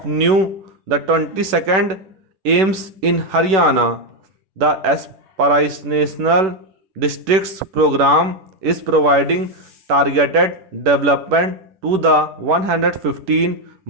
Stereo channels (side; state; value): left; late; 11 ms